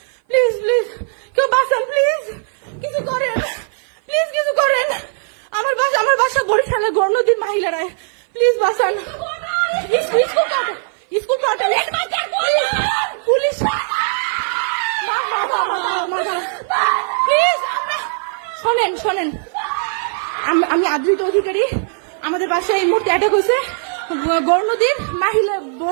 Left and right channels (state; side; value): silent; left; 57 dB below the other